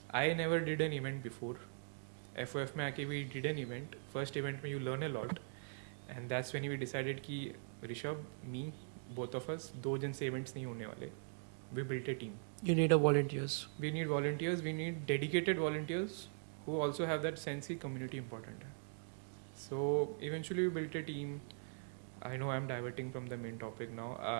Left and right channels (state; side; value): silent; left; digital silence